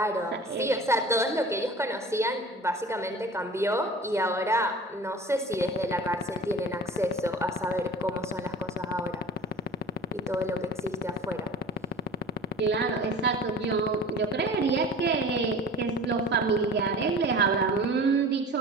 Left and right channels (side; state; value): both; normal; correlation 0.40